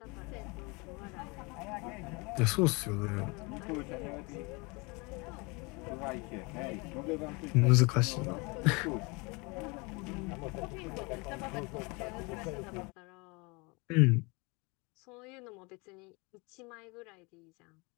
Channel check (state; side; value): quieter; right; 28.2 dB